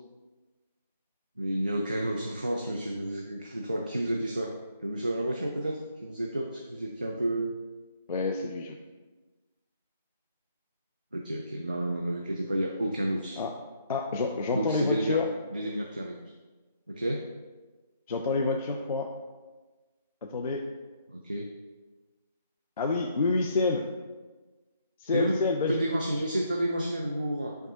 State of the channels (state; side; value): inverted; both; correlation -0.71